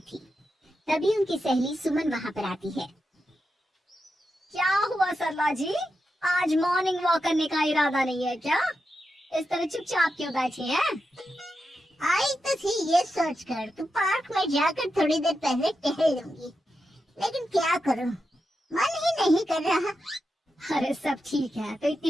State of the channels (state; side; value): normal; both; correlation 0.88